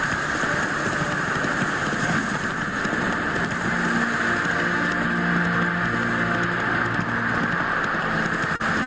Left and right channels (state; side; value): identical; both; correlation 1.00